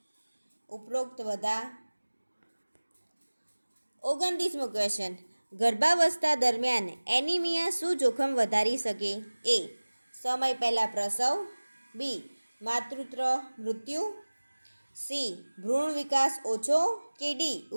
ઉપરોક્ત બધા. 29મો ક્વેશ્ચન, ગર્ભાવસ્થા દરમિયાન એનિમિયા શું જોખમ વધારી શકે? એ સમય પહેલાં પ્રસવ. બી માતૃત્વ મૃત્યુ. સી ભ્રૂણ વિકાસ ઓછો. કે ડી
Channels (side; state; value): both; inverted; correlation -1.00